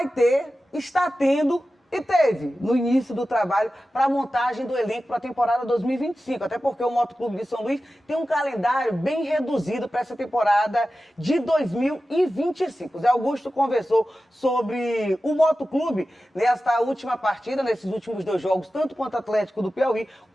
está tendo e teve no início do trabalho para a montagem do elenco para a temporada 2025, até porque o Motoclube de São Luís tem um calendário bem reduzido para essa temporada de 2025. O Zé Augusto conversou sobre o Motoclube nesta última partida, nesses últimos 2 jogos, tanto contra o Atlético do Piauí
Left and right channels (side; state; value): both; normal; correlation 0.94